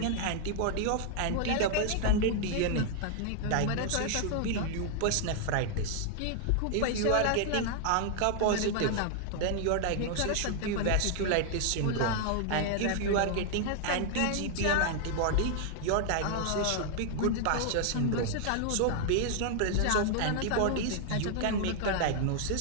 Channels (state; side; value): different; both; correlation 0.00